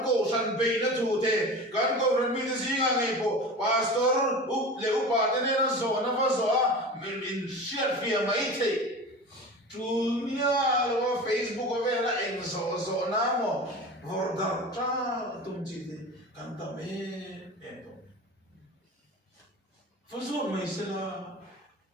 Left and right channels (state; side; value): normal; both; correlation 0.33